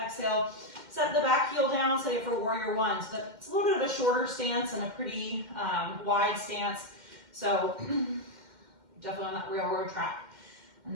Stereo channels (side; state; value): left; late; 2.1 ms